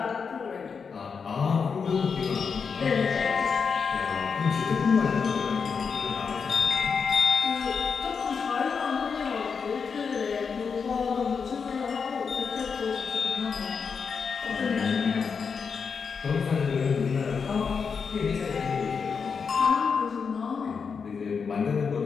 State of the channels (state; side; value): quieter; right; 5.8 dB